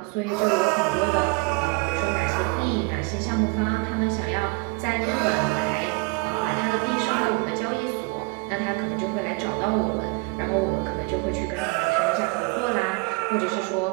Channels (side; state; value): left; quieter; 28.8 dB